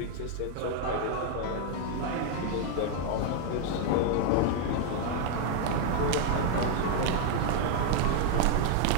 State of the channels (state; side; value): different; both; correlation 0.00